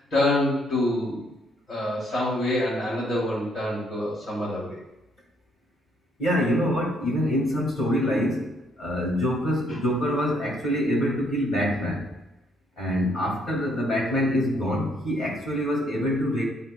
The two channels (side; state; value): both; normal; correlation 0.69